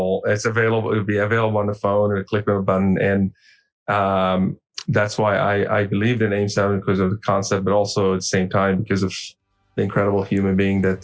It's available. It'll be available on the phone, or click on a button. And that's why I believed in AIM 7, because of the concept, but also at the same time because of the incredible human being that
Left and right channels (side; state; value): both; identical; correlation 1.00